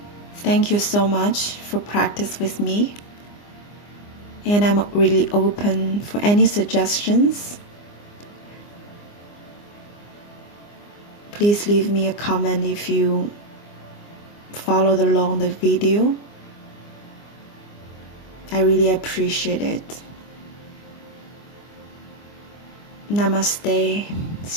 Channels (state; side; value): late; right; 24 ms